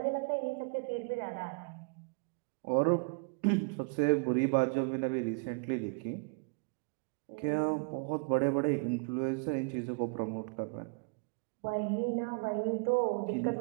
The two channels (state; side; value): quieter; left; 33.8 dB